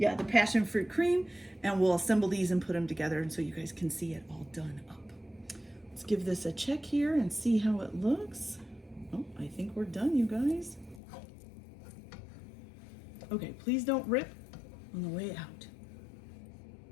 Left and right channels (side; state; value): right; drops out; at 11.0 s